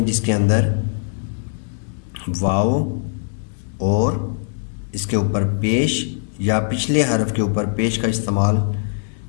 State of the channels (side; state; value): right; silent; 65 dB below the other